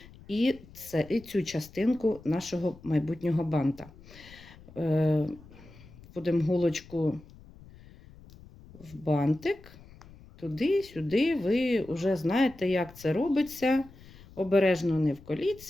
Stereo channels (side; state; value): left; noise; rumble, 21 dB below the sound